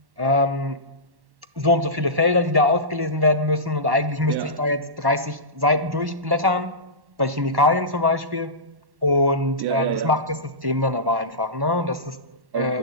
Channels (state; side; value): late; left; 1.1 ms